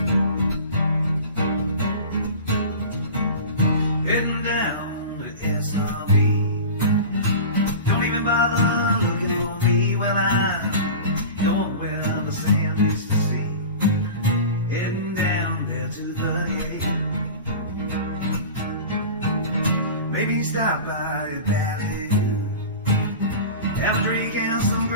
Heading down to SRB. Don't even bother looking for me. Well, I'm going where the sand used to see. Heading down there to 38. Maybe stop by a valley. Have a drink and some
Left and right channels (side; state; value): both; inverted; correlation -0.33